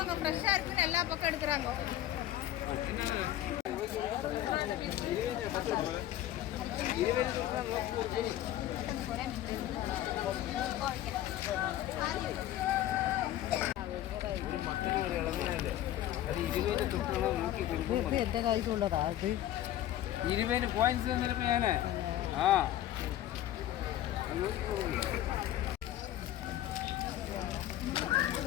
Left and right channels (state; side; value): quieter; right; 13.1 dB